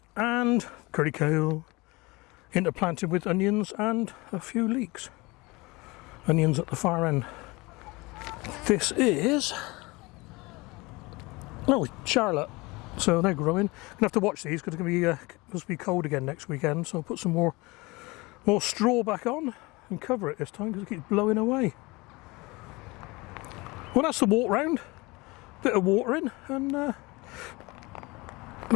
And curry kale, interplanted with onions and a few leeks. Onions at the far end. This is, Charlotte. So they're growing. Gonna have to watch these because it's gonna be supposed to be cold again next weekend. So I'll put some more straw back on and cover it this time because it keeps blowing away. Well, that's the walk round. Bit of watering and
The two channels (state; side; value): quieter; right; 23.9 dB